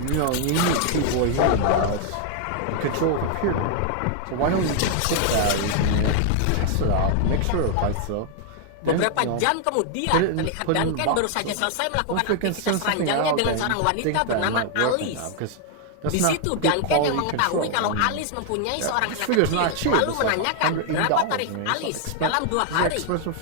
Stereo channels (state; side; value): different; both; correlation 0.00